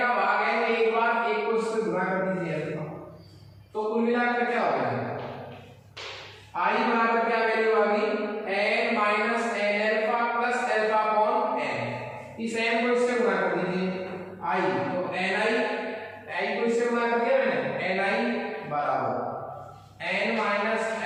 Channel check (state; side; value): identical; both; correlation 1.00